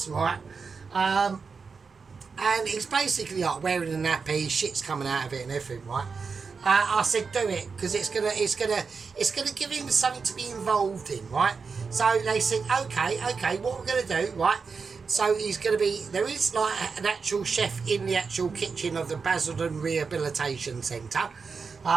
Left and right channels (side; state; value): left; quieter; 5.1 dB